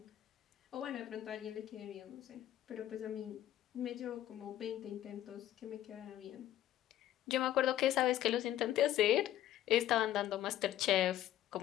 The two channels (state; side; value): quieter; right; 12.8 dB